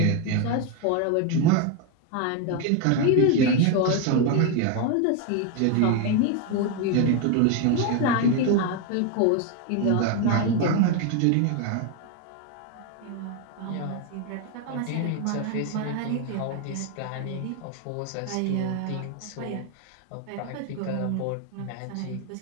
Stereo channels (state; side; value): different; both; correlation 0.02